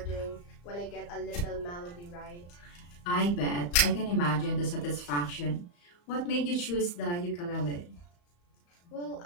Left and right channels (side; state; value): right; late; 34 ms